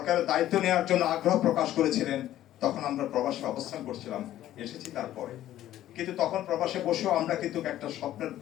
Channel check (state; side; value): quieter; right; 13.1 dB